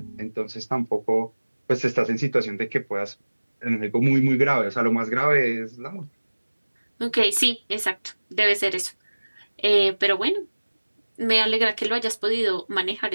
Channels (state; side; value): inverted; both; correlation -1.00